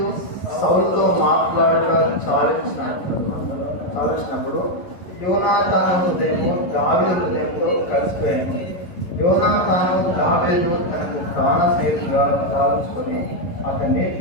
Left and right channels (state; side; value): late; right; 11 ms